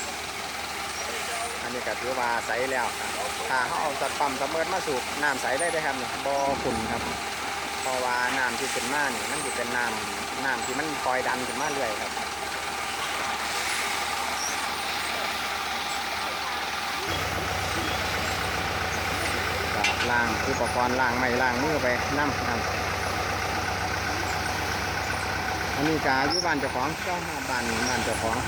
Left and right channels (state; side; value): identical; both; correlation 1.00